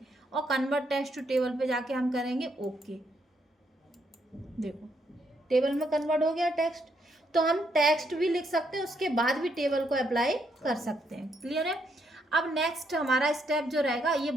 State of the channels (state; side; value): normal; both; correlation 0.75